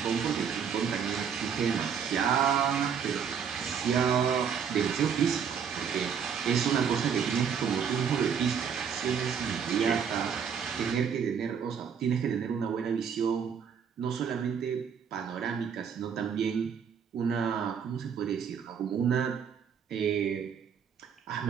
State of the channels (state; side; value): quieter; left; 7.2 dB